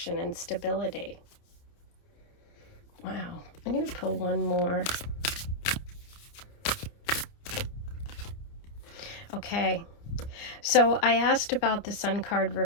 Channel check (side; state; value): right; late; 29 ms